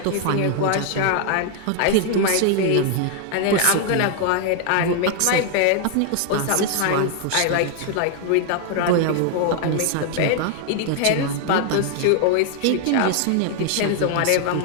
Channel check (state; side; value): different; both; correlation 0.00